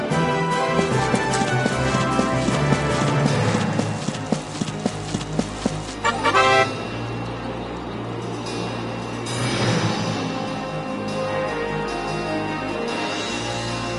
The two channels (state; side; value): identical; both; correlation 1.00